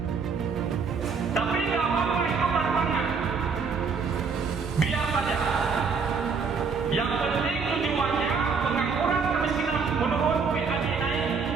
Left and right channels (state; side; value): quieter; left; 5.3 dB